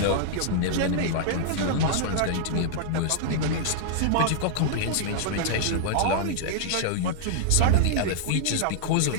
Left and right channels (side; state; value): both; different; correlation -0.01